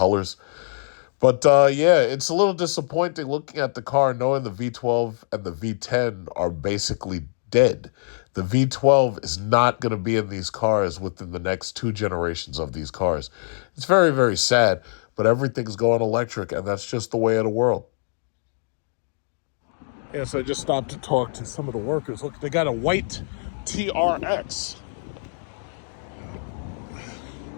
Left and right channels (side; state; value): right; silent; digital silence